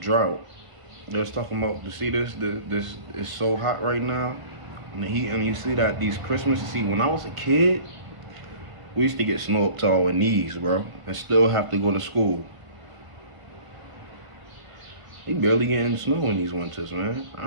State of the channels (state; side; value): late; left; 1.5 ms